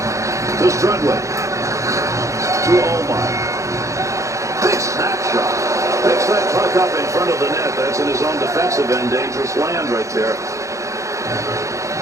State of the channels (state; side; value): late; left; 0.15 ms